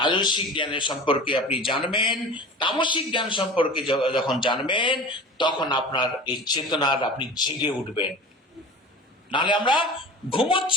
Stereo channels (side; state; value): both; normal; correlation 0.37